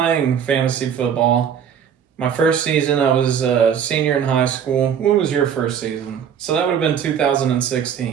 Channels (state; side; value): quieter; left; 8.1 dB